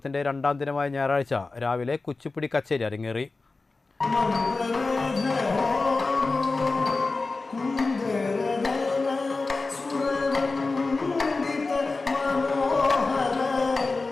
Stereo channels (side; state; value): right; quieter; 3.7 dB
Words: 2ാം ദിനമായ ഞായറാഴ്ച രാവിലെ കുച്ചിപ്പുടി കച്ചേരി അരങ്ങേറി.